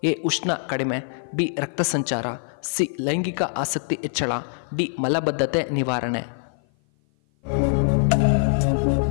ಎ ಉಷ್ಣ ಕಡಿಮೆ, ಬಿ ರಕ್ತ ಸಂಚಾರ, ಸಿ ಲೈಂಗಿಕ ಆಸಕ್ತಿ ಹೆಚ್ಚಳ, ಡಿ ಮಲಬದ್ಧತೆ ನಿವಾರಣೆ.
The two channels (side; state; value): right; silent; 56 dB below the other